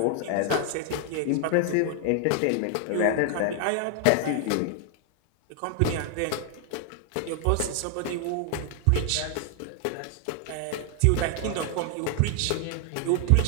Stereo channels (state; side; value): different; both; correlation 0.00